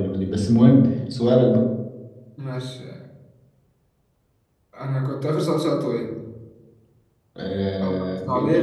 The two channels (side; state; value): both; identical; correlation 1.00